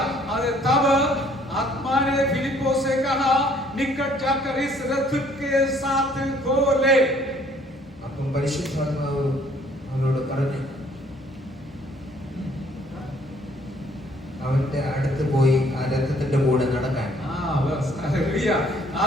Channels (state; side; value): normal; both; correlation 0.61